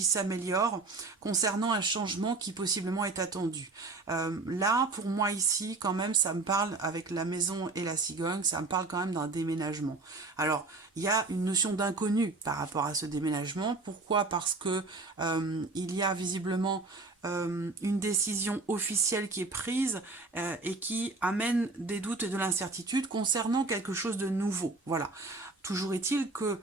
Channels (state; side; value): quieter; left; 3.6 dB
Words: s'améliore concernant un changement qui possiblement est attendu. Là, pour moi ici, quand même, ça me parle, avec la maison et la cigogne, ça me parle quand même d'un déménagement. Alors, il y a une notion d'inconnu par rapport à ce déménagement. Pourquoi? Parce que il y a visiblement une décision officielle qui est prise et qui amène des doutes et de l'incertitude concernant quelque chose de nouveau. Voilà. Toujours est-il que